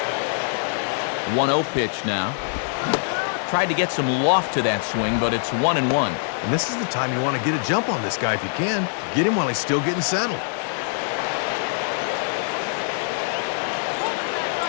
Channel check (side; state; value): right; silent; digital silence